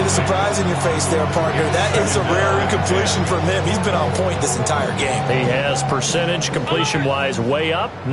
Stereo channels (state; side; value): identical; both; correlation 1.00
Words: the surprise in your face there, partner. That is a rare incompletion from him. He's been on point this entire game. He has percentage completion-wise way up,